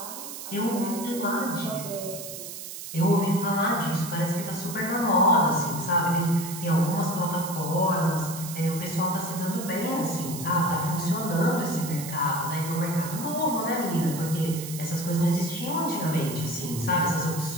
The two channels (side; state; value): right; noise; hiss, 10 dB below the sound